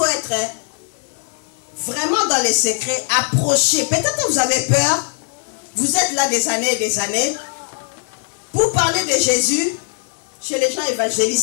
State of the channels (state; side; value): silent; right; 66 dB below the other